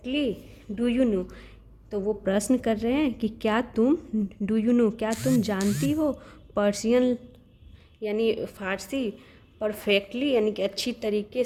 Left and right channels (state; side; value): identical; both; correlation 1.00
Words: do you know, तो वो प्रश्न कर रहे हैं कि क्या तुम, डू यू नो क्या तुम जानती हो, पर्शियन यानी फ़ारसी, परफेक्टली यानी कि अच्छी तरीके